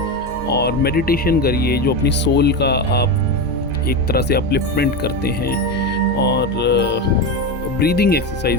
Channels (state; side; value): normal; both; correlation 0.17